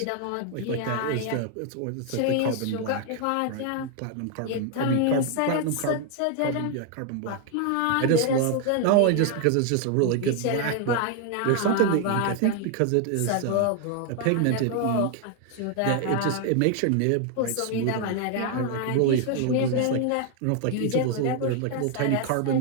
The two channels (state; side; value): different; both; correlation 0.00